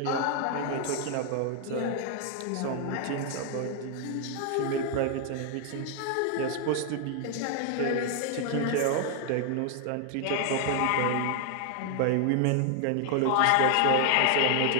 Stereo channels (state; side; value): different; both; correlation 0.00